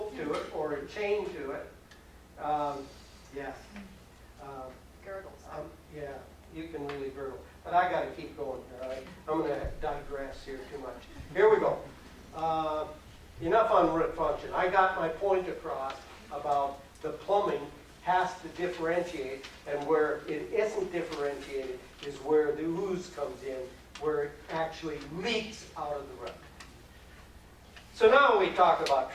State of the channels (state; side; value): identical; both; correlation 1.00